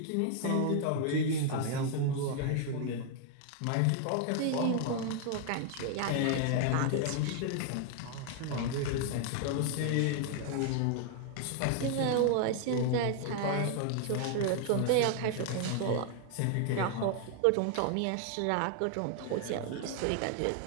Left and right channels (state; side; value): different; both; correlation 0.00